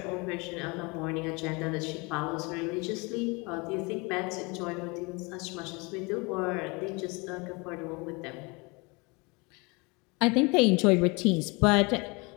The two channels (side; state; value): right; quieter; 27.9 dB